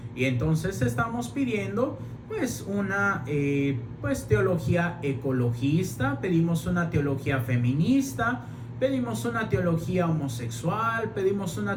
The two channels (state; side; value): identical; both; correlation 1.00